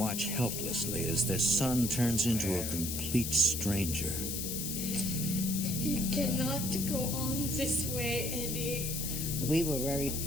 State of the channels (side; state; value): left; noise; hiss, 3 dB below the sound